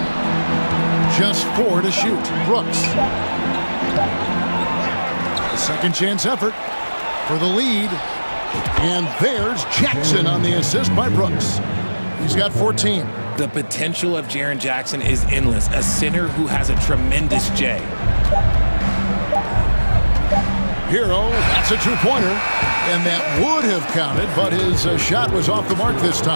Just 4 to shoot. Brooks. A second chance effort for the lead. And there's Jackson on the assist by Brooks. He's got 14. The potential of Jaren Jackson is endless. A center who has a tremendous J. Hero, that's a 2-pointer. And that would have counted, but his shot was off the mark this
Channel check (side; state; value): both; inverted; correlation -1.00